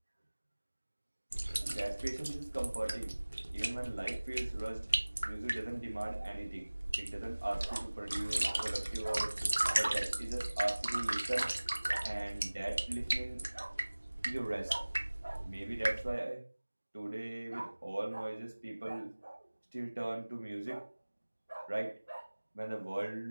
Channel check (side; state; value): both; inverted; correlation -1.00